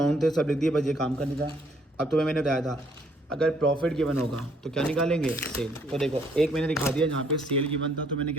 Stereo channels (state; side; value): normal; both; correlation 0.66